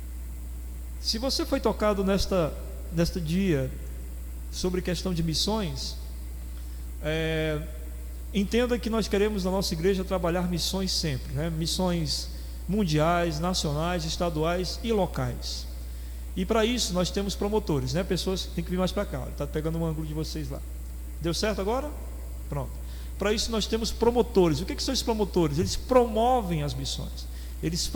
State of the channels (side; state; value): both; identical; correlation 1.00